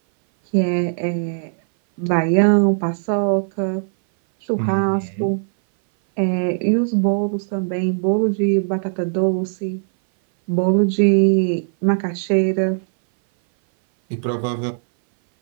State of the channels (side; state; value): left; silent; 59 dB below the other